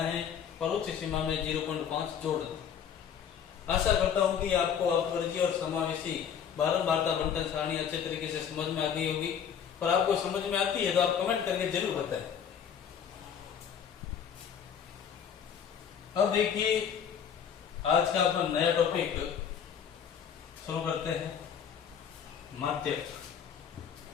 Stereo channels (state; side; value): quieter; right; 8.0 dB